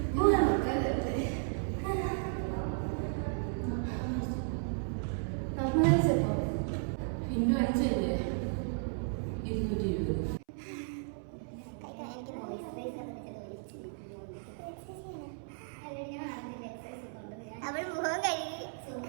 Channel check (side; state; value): left; silent; 55 dB below the other